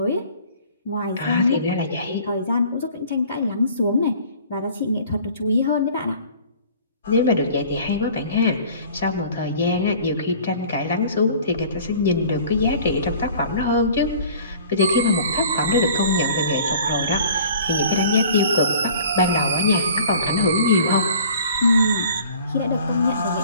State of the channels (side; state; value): both; inverted; correlation -0.49